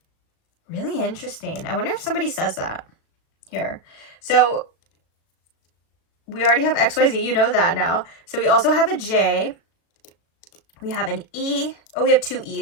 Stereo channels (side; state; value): right; late; 37 ms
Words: Really interesting. I wonder if somebody says that here. So we already have XYZ, you know that now. So we also have a J. We have an E. Oh, we have two